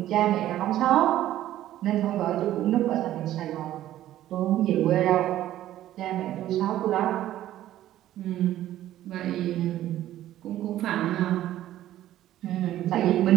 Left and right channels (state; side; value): quieter; left; 13.2 dB